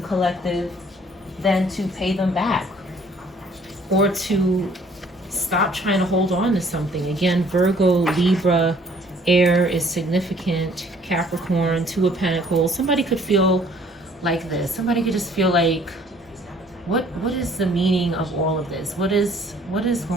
collective than to pay them back. or to stop trying to hold on to something. Again, Virgo, Libra, air is significant. Capricorn, Two of Pentacles. Somebody could feel like this. Somebody could just feel like, what is the meaning of all of this? What is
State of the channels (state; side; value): normal; both; correlation 0.58